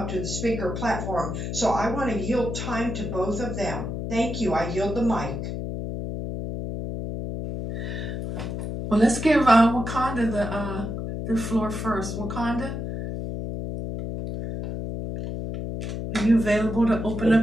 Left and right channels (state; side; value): noise; left; hum, 5 dB below the sound